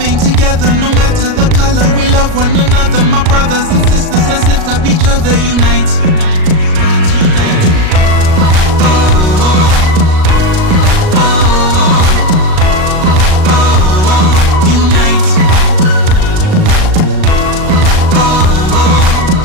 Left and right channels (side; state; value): left; late; 38 ms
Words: together. No matter the color, we love one another. My brothers and sisters, let's lift up each other, unite.